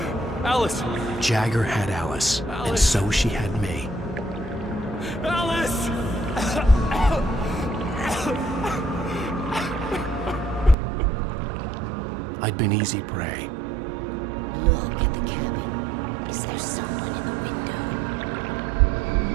Alice! Jagger had Alice, and so she had me. Alice! I'd been easy prey. Look at the cabin. Is there someone in the window?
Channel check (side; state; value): left; drops out; at 10.8 s